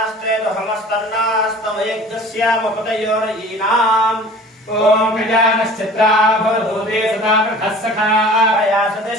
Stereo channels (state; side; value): normal; both; correlation 0.44